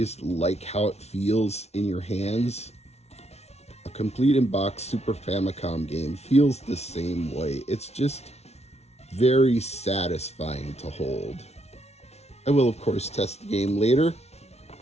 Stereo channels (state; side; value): late; right; 0.31 ms